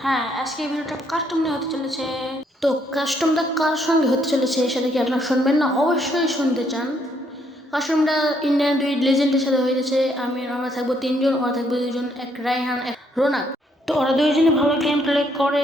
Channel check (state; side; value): normal; both; correlation 0.71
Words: হ্যাঁ, আজকে এই ভিডিওটা কাস্টম নিয়ে হতে চলেছে। তো কাস্টমটা কার সঙ্গে হতে চলেছে সেটা কি আপনারা শুনবেন না? অবশ্যই শুনতে চান। কাস্টমটা ইন্ডিয়ান দুই লেজেন্ডের সাথে হয়ে গেছে। আমরা থাকবো তিনজন, ওরা থাকবো দুজন, এক রায়হান এক রোনাক। তো ওরা দুইজনে ভালো গেম প্লে